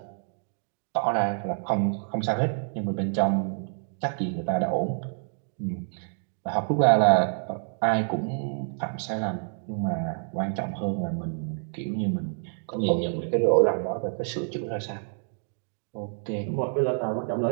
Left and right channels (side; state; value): left; silent; 60 dB below the other